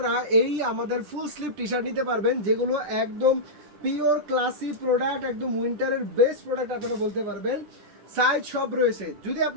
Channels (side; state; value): left; late; 10 ms